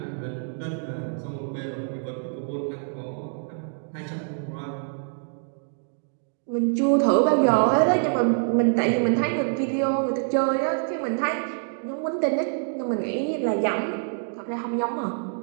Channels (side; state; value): left; silent; digital silence